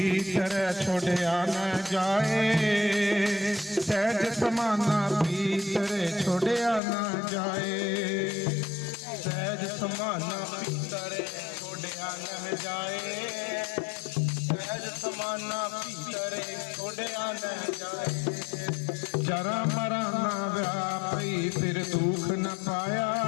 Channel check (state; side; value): drops out; right; at 6.8 s